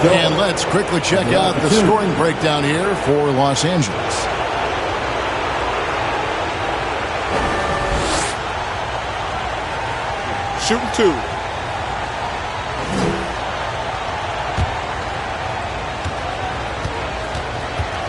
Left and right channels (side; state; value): both; identical; correlation 1.00